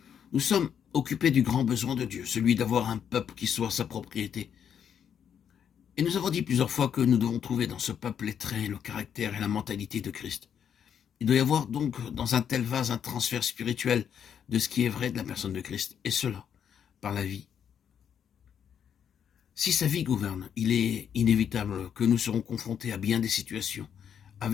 Nous sommes occupés du grand besoin de Dieu, celui d'avoir un peuple qui soit sa propriété. Et nous avons dit plusieurs fois que nous devons trouver dans ce peuple les traits, le caractère et la mentalité de Christ. Il doit y avoir donc dans un tel vase un transfert spirituel de ce qui est vrai de la personne de Christ, et cela par la vie. Si sa vie gouverne, il est inévitable que nous serons confrontés à bien des situations,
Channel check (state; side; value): quieter; right; 8.3 dB